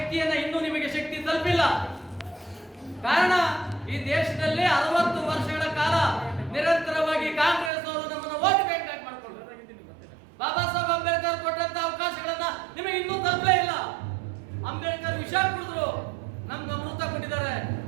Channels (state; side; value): drops out; left; at 7.7 s